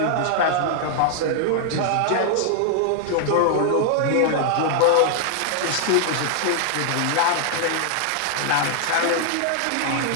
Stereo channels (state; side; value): different; both; correlation 0.00